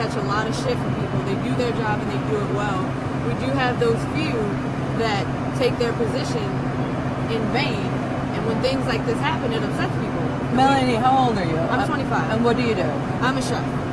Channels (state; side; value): identical; both; correlation 1.00